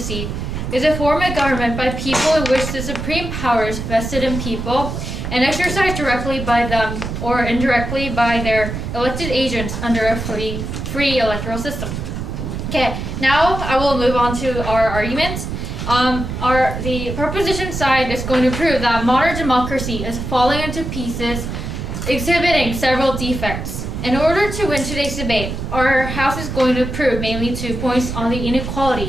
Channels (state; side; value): noise; right; rumble, 5 dB below the sound